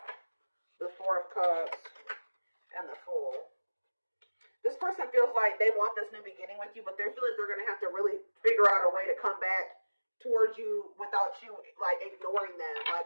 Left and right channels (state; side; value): inverted; both; correlation -1.00